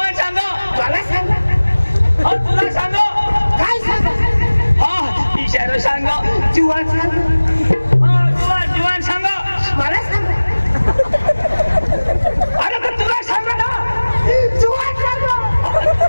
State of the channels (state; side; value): inverted; both; correlation -1.00